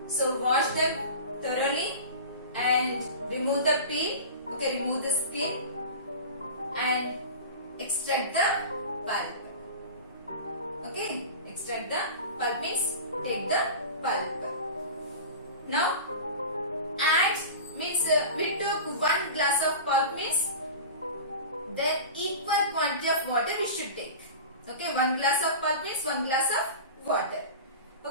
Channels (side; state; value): both; inverted; correlation -0.33